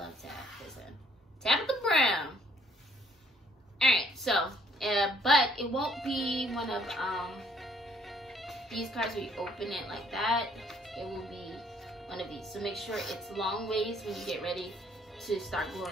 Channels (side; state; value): both; normal; correlation 0.64